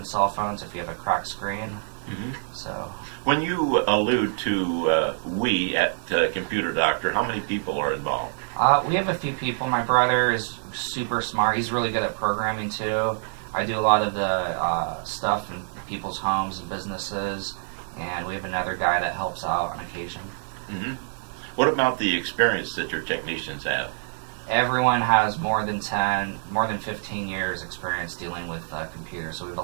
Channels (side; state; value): left; silent; 61 dB below the other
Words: cell phones if you have a cracked screen. Mm-hmm. So When you allude to we at Computer Doctor, how many people are involved? we have a few people. My brother is super smart. He's really good at programming too. I do a lot of the stuff in people's homes and businesses, and we have another guy that helps out on occasion. Mm-hmm. What about the experience that your technicians have? Everyone has more than 15 years experience dealing with computers, so we have a